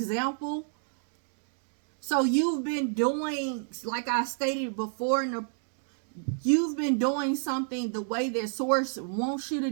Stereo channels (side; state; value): left; silent; 58 dB below the other